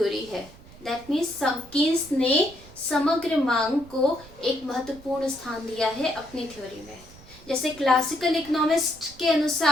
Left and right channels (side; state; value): right; noise; rumble, 21 dB below the sound